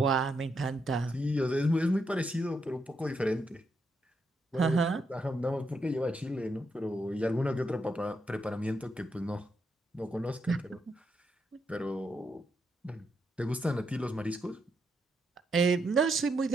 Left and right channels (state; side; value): normal; both; correlation 0.80